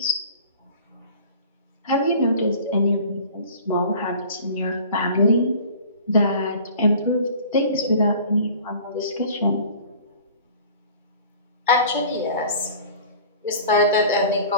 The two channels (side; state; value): both; inverted; correlation -0.44